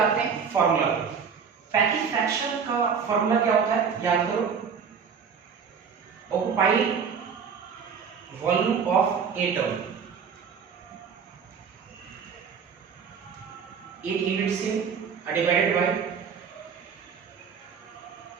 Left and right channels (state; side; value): quieter; left; 6.4 dB